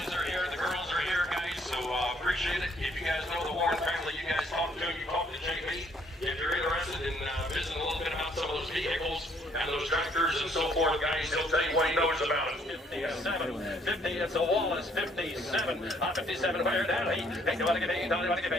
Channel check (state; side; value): normal; both; correlation 0.65